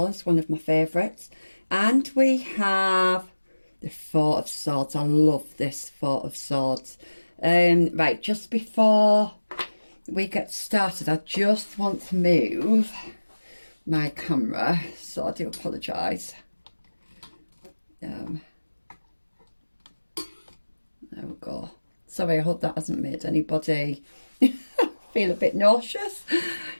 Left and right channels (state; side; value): inverted; both; correlation -1.00